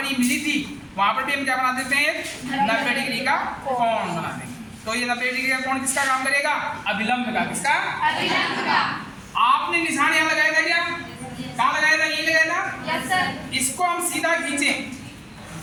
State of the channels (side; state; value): both; identical; correlation 1.00